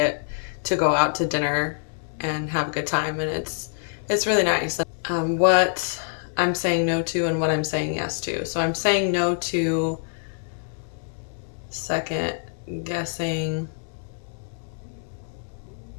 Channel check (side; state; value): right; silent; digital silence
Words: to go out to dinner and have a good time, and it's really nice. What I'm saying no to and what I'm saying yes to. So I'm saying no to second guessing